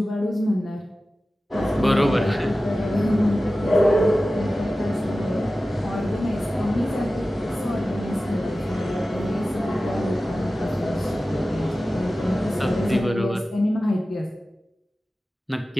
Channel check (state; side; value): normal; both; correlation 0.95